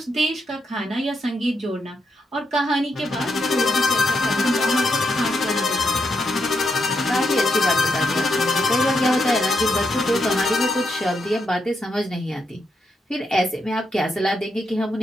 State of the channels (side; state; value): both; normal; correlation 0.81